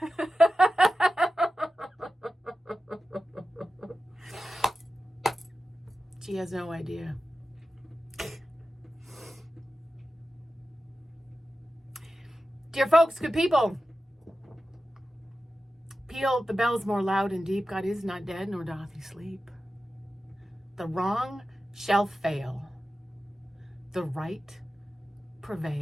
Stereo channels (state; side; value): normal; both; correlation 0.93